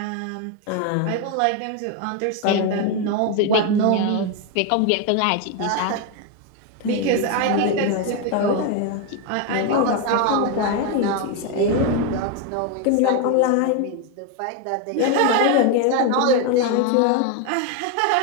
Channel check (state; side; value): different; both; correlation 0.01